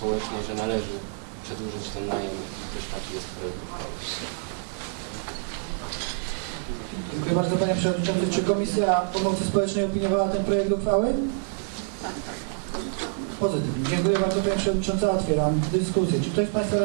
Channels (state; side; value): silent; left; 60 dB below the other